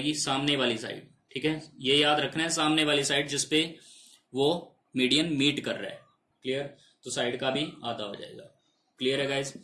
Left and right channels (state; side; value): identical; both; correlation 1.00